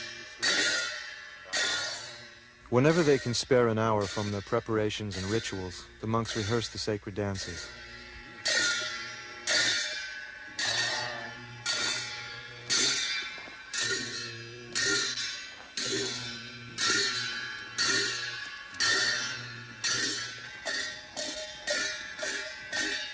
Whenever they can spare an hour from their preparations and rituals, the monks rehearse the sacred dances.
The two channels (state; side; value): identical; both; correlation 1.00